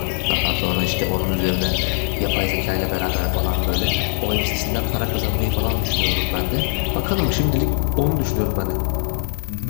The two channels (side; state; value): right; silent; digital silence